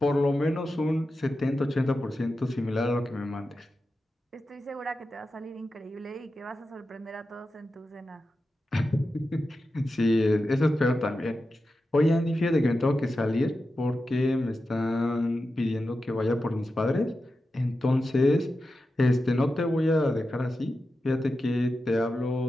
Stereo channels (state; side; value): normal; both; correlation 0.91